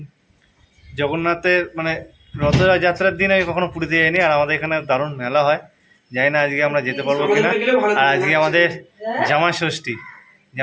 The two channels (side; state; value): both; identical; correlation 1.00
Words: জগন্নাথের মানে রথযাত্রার দিন আমি কখনো পুরীতে যাইনি। আর আমাদের এখানে দারুণ মেলা হয়, জানি না আজকে আমরা যেতে পারবো কিনা। আর আজকে আমাদের জামা